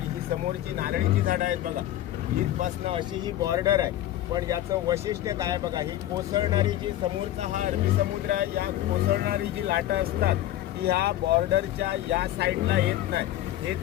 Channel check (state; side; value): quieter; right; 13.5 dB